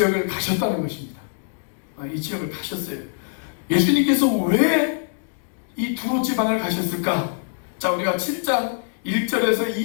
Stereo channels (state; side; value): silent; right; digital silence